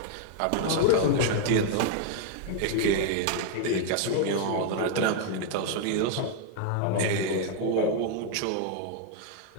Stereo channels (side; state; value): both; different; correlation 0.00